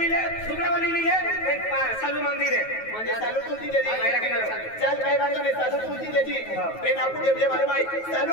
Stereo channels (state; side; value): late; right; 9.3 ms